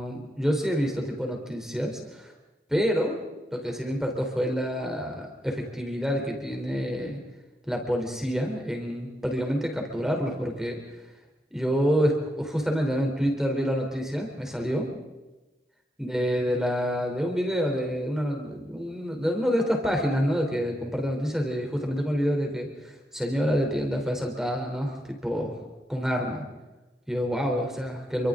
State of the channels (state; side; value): normal; both; correlation 0.81